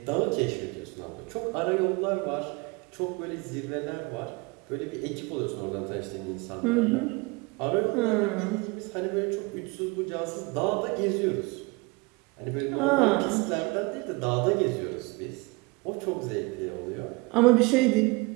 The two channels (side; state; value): left; quieter; 26.5 dB